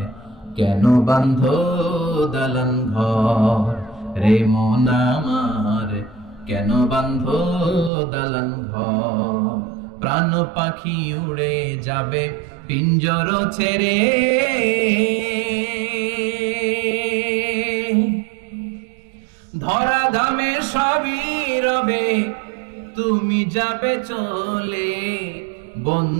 কেন বাঁধো দালান ঘর রে মন আমার, কেন বাঁধো দালান ঘর। প্রাণ পাখি উড়ে যাবে পিঞ্জর ছেড়ে, ধরা ধামে সবই রবে তুমি যাবে চলে।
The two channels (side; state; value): left; drops out; at 7.9 s